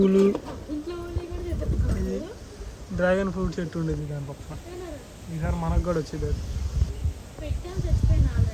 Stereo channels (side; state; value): both; identical; correlation 1.00